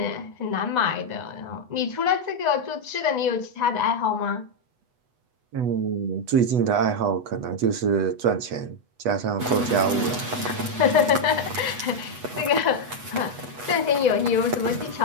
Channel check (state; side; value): late; left; 8.1 ms